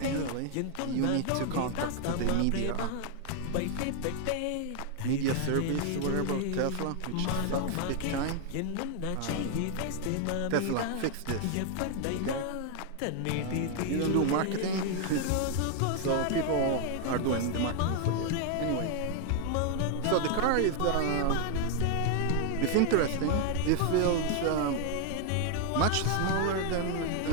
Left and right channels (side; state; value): both; different; correlation 0.00